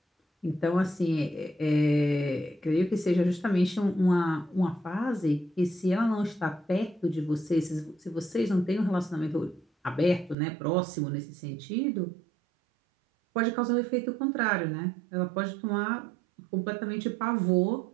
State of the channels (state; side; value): drops out; left; at 10.4 s